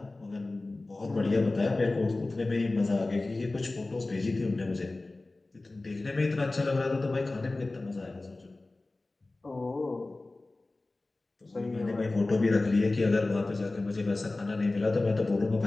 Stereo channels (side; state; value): right; quieter; 3.1 dB